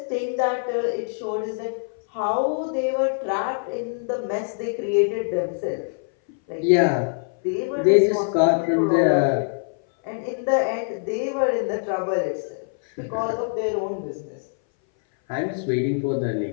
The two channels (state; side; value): silent; right; 59 dB below the other